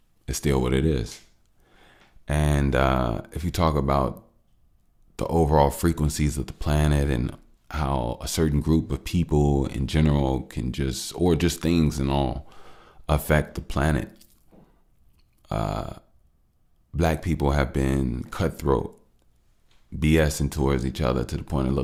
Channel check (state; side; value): identical; both; correlation 1.00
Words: it's still what it is. And if you talk about the overall frequencies of the planet and how a certain group of people in general can or just things and all, affect the planet, black people have been cutthroat, BSing towards each other to the point it